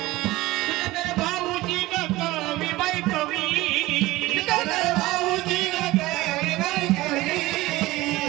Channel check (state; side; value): quieter; left; 18.7 dB